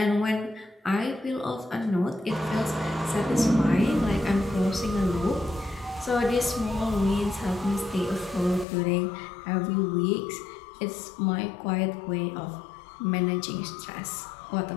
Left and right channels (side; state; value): right; drops out; at 8.7 s